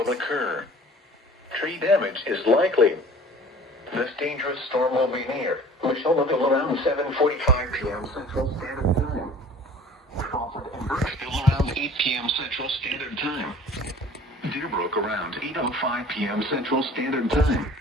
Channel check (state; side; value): normal; both; correlation 0.47